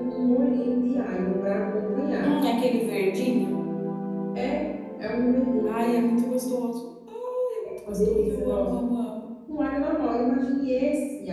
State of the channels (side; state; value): both; identical; correlation 1.00